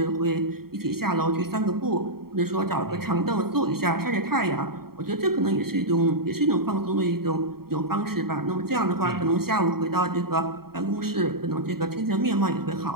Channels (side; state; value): left; late; 0.94 ms